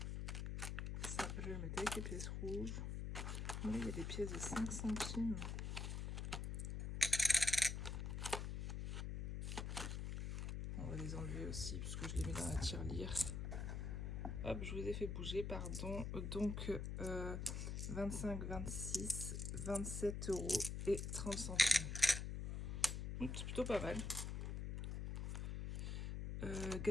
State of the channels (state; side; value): noise; left; hum, 3 dB below the sound